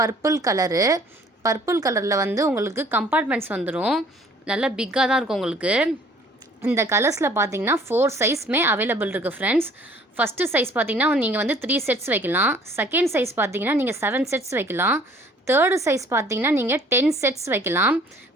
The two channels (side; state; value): both; normal; correlation 0.55